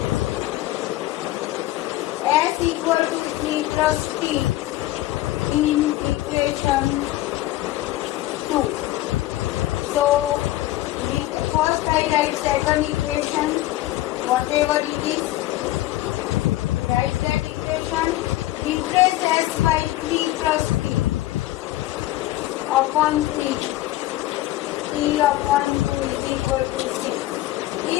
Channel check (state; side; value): quieter; right; 16.2 dB